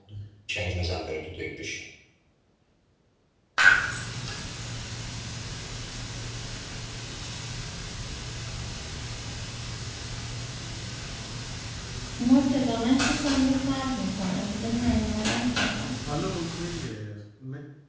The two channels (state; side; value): identical; both; correlation 1.00